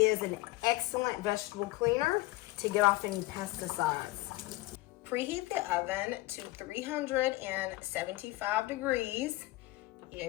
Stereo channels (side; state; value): right; quieter; 19.4 dB